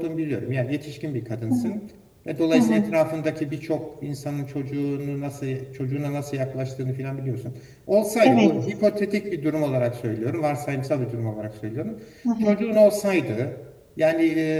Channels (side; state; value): both; identical; correlation 1.00